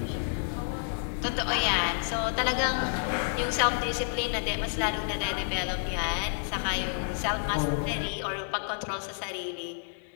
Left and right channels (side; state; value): right; silent; digital silence